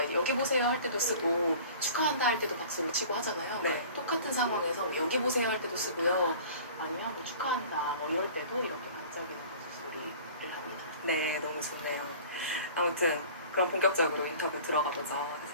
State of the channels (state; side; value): inverted; both; correlation -0.44